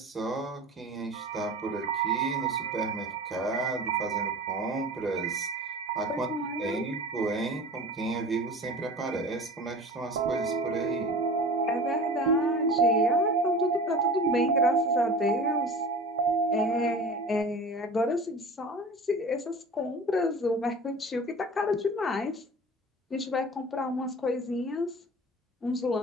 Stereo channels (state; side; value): normal; both; correlation 0.38